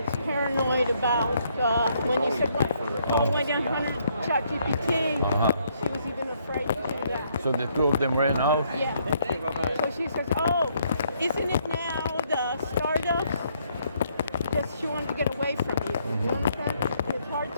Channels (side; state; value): both; inverted; correlation -0.70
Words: paranoid about when you said, "Oh, went on 100 ChatGPT." She was even afraid to do that. So the two of them ran out. Yeah. So she says, "Oh, isn't it now the startups?" Because she wanted to get away from you. You understand? It's hard